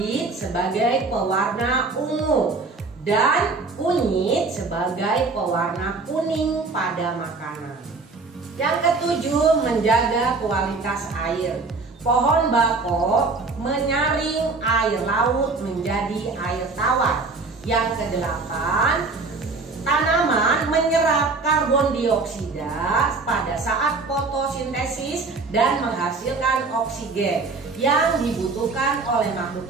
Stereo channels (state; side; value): quieter; left; 3.9 dB